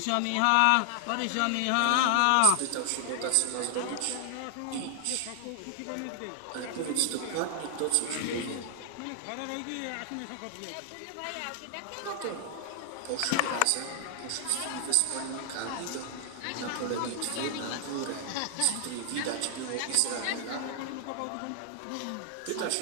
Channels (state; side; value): different; both; correlation 0.00